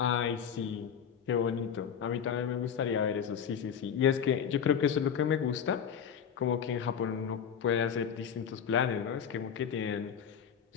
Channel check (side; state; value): right; quieter; 7.8 dB